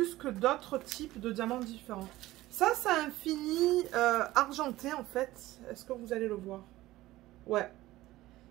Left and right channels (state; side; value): quieter; left; 16.9 dB